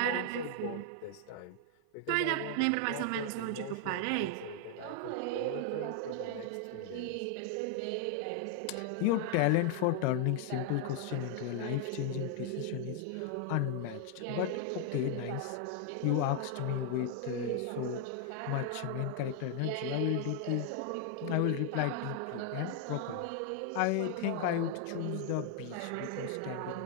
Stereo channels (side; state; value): both; different; correlation 0.00